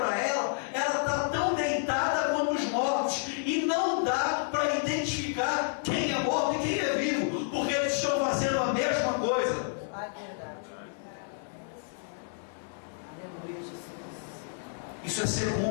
ela, ela está tão deitada quanto os mortos, e não dá para identificar quem é morto e quem é vivo, porque eles estão fazendo a mesma coisa. Isso é ser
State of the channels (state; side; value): silent; right; 58 dB below the other